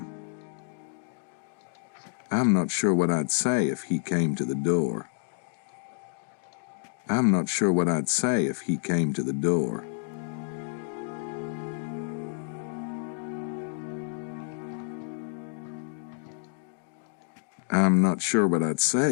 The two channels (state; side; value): silent; right; digital silence